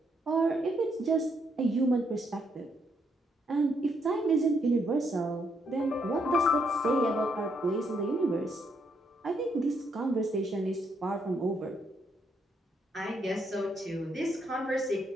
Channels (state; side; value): normal; both; correlation 0.75